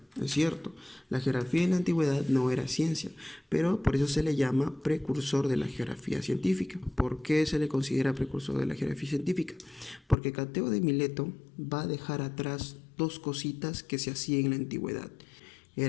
Es cierto, la geografía en la antigüedad no era ciencia, pero por eso se le llama precursor de la geografía científica. ¿Por qué se le considera precursor de la geografía científica? Porque Cateo de Mileto va a dejar atrás dos cositas que se hacían en la antigüedad.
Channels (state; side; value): drops out; right; at 10.2 s